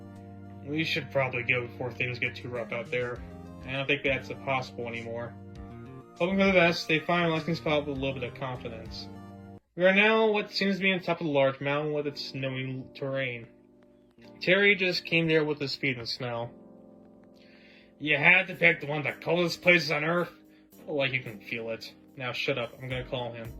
We should probably go before things get too rough out there. I don't think that's possible anymore. Hoping for the best, they find a resting spot with a little bit of confidence. We are now what seems to be on top of a large mountain with its snowy terrain. Terry just came there with his feet in the snow. You had to pick the one of the coldest places on Earth? Like you can feel it. Now shut up, I'm gonna call him.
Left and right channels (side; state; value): both; identical; correlation 1.00